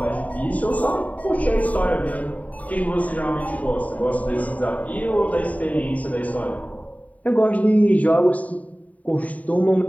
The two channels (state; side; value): late; right; 0.070 ms